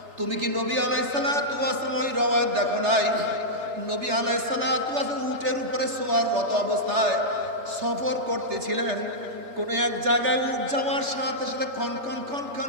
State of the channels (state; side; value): late; left; 3.3 ms